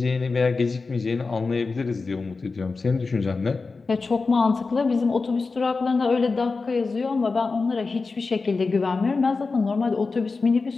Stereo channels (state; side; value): quieter; right; 4.1 dB